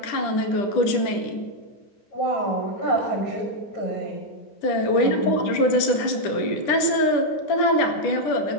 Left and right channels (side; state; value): right; late; 10 ms